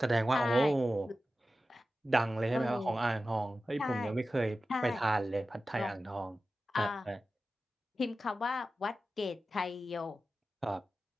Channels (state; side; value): normal; both; correlation 0.94